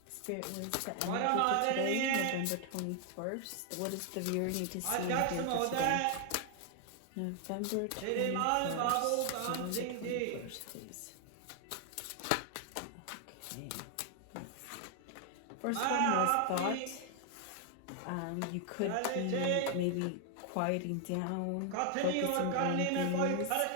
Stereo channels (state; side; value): different; both; correlation 0.00